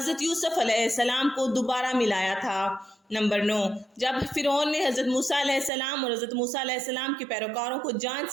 یوسف علیہ السلام کو دوبارہ ملایا تھا۔ نمبر 9، جب فرعون نے حضرت موسیٰ علیہ السلام اور حضرت موسیٰ علیہ السلام کے پیروکاروں کو جان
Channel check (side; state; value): left; drops out; at 5.7 s